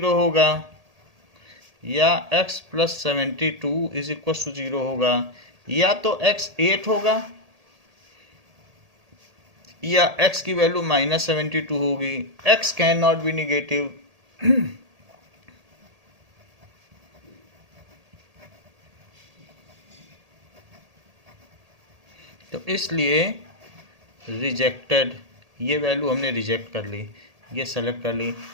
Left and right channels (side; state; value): left; late; 1.8 ms